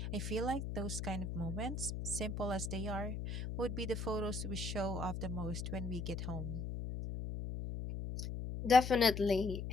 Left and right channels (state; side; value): noise; left; hum, 4 dB below the sound